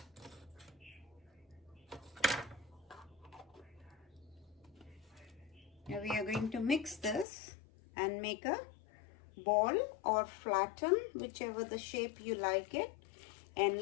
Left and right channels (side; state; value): right; drops out; at 7.2 s